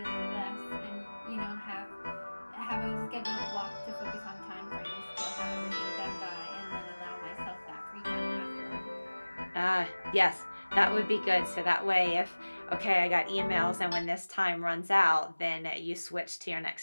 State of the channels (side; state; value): both; inverted; correlation -1.00